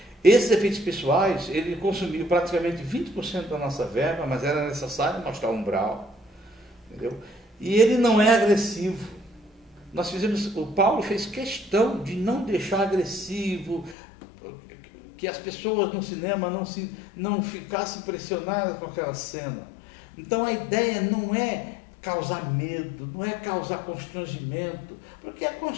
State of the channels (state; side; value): drops out; right; at 14.0 s